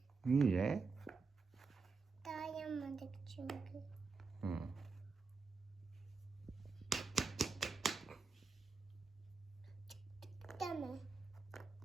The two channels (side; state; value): left; quieter; 4.4 dB